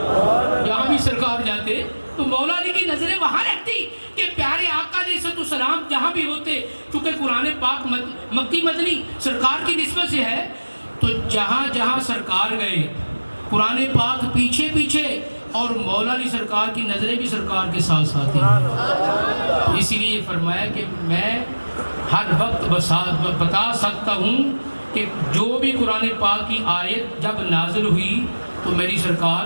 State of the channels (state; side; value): inverted; both; correlation -1.00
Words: جہاں بھی سرکار جاتے تو مولا علی کی نظریں وہاں رہتی کہ پیارے آقا علیہ السلام جہاں بھی ہوتے، چونکہ قرآن پاک مکی مدنی سرکار کی نسبت سے ہے، تو جہاں جہاں سرکار گئے قرآن پاک پیچھے پیچھے اور مولا علی سرکار کی نظریں بھی سرکار کے ساتھ ساتھ ہیں۔ اسی لیے فرمایا کہ میں ہر وقت بتا سکتا ہوں کہ جو بھی قرآن پاک کی آیت جب نازل ہوئی تو میری سرکار